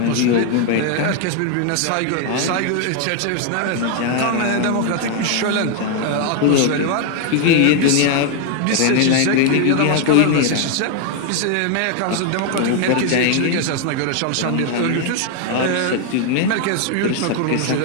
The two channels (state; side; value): different; both; correlation 0.01